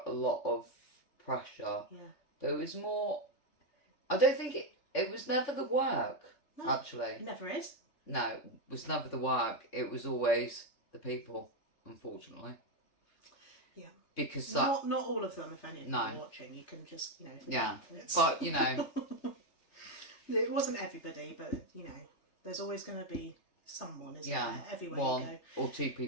a lot of pressure. Yeah. There was more. I don't think it was never the work. No, actually. It never is. No, it was never the work. It was always the people, unfortunately. Yeah. Because not all of them. If any of them are watching, you can just Yeah. But it wasn't everybody, but there's always going to be someone, isn't there? Everywhere one you go. or two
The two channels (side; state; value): right; late; 3.6 ms